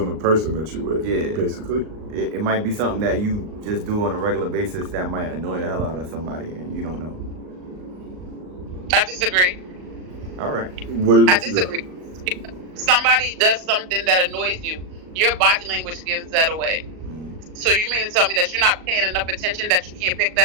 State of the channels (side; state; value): left; late; 38 ms